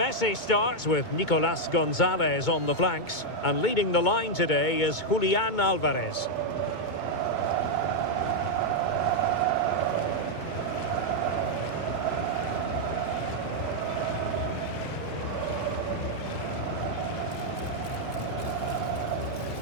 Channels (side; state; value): right; late; 2.2 ms